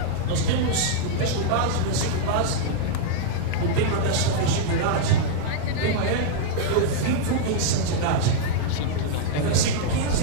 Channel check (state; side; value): different; both; correlation -0.02